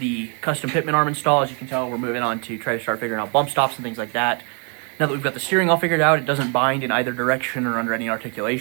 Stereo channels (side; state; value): left; quieter; 37.9 dB